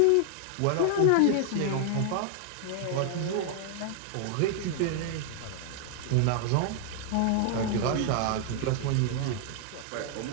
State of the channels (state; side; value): different; both; correlation 0.00